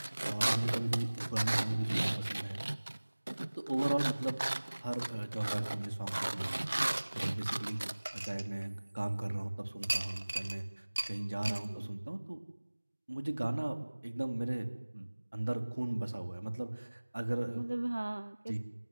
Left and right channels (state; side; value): inverted; both; correlation -1.00